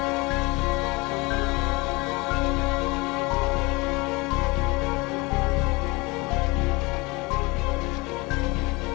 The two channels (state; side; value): quieter; right; 25.0 dB